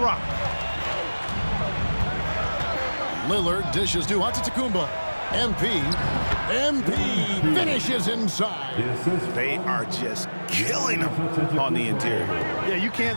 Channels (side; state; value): both; inverted; correlation -1.00